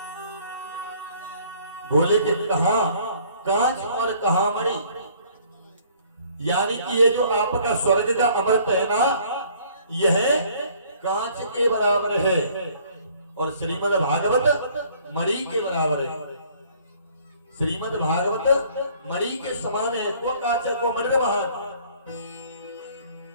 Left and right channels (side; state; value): both; inverted; correlation -0.58